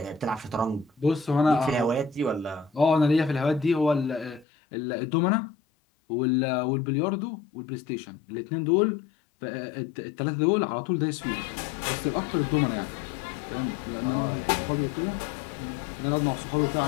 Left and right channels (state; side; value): drops out; right; at 4.5 s